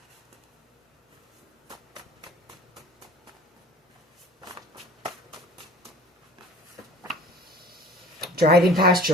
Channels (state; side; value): normal; both; correlation 0.46